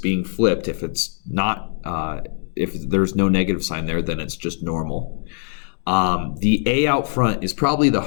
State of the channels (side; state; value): right; silent; 63 dB below the other